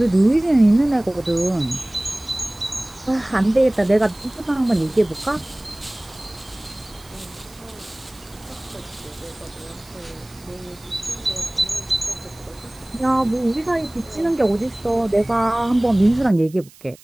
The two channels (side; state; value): right; noise; hiss, 24 dB below the sound